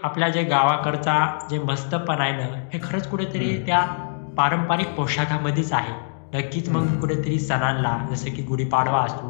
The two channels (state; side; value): silent; right; digital silence